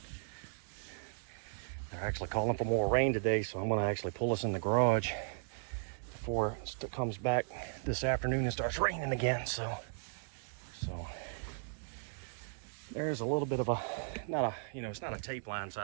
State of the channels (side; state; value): left; silent; digital silence